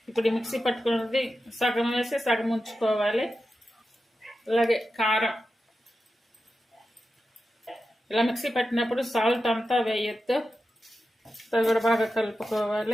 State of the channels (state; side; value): normal; both; correlation 0.91